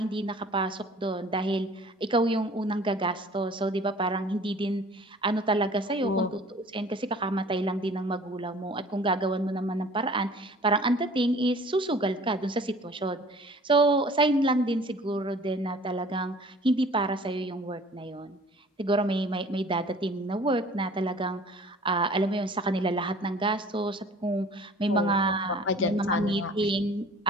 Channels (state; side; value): normal; both; correlation 0.49